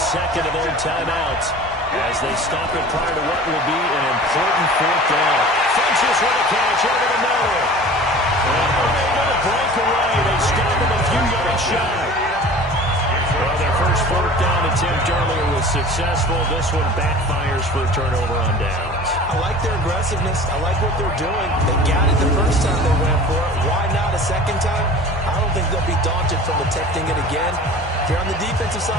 of their timeouts as they stop it prior to what will be an important 4th down. Funchess with a catch over the middle. And unable to break away. They stop him a few yards shy. Well, their first 4th down attempt earlier was successful. This one backfires for a turnover on downs. I like their aggressiveness. I like what they're doing. They got it the first time they went for it. Why not a second time? I don't think they'll be daunted from attempting it again. If you're on the defensive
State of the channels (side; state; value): both; normal; correlation 0.41